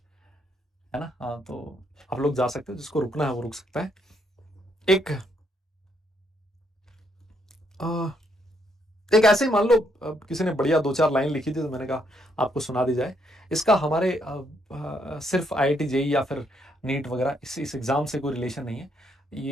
ना। हाँ, तो आप लोग जा सकते हो, जिसको रुकना है वो रुक सकता है। एक आ, एक ऐसे ही मान लो किसी ने बढ़िया 2-4 लाइन लिखी थी तो मैंने कहा आपको सुना दी जाए। इसका हमारे सिर्फ आईआईटी जेई या फिर नीट वगैरह इस एग्जाम से कोई रिलेशन नहीं है।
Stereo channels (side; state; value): both; normal; correlation 0.73